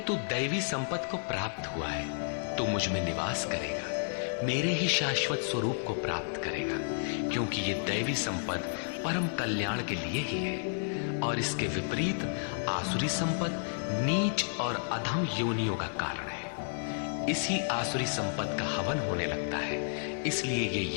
दैवी संपद को प्राप्त हुआ है। तू मुझ में निवास करेगा, मेरे ही शाश्वत स्वरूप को प्राप्त करेगा, क्योंकि ये दैवी संपद परम कल्याण के लिए ही है और इसके विपरीत आसुरी संपद नीच और अधम योनियों का कारण है। इसी आसुरी संपद का हवन होने लगता है, इसलिए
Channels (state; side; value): silent; right; 56 dB below the other